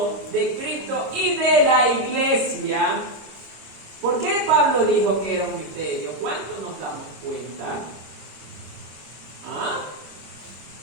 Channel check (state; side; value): late; left; 26 ms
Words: de Cristo y de la iglesia. ¿Por qué Pablo dijo que era un misterio? ¿Cuánto nos damos cuenta? ¿Ah?